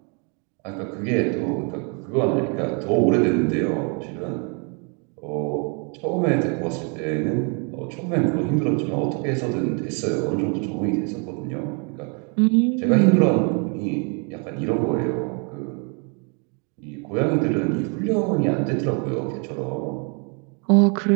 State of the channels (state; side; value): quieter; left; 36.4 dB